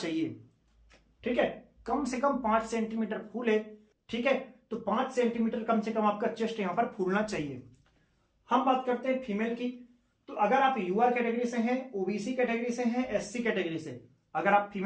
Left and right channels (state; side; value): identical; both; correlation 1.00